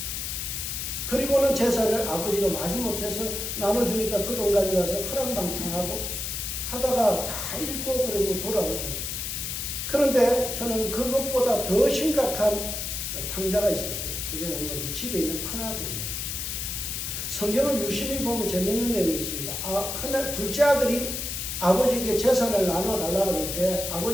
그리고는 재산을 아버지가 마지못해서 나눠주니까 그 돈 가져가서 허랑방탕하고 하다가 다 잃고 그러고 돌아오죠. 그런데 저는 그것보다 더 심각한 탕자가 있었어요. 그게 뭔가 집에 있는 큰아들이에요. 성경을 유심히 보면 재밌는 내용이 있습니다. 둘째 아들이 아버지에게 재산을 나눠달라고 그럴 때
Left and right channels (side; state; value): left; noise; hiss, 4 dB below the sound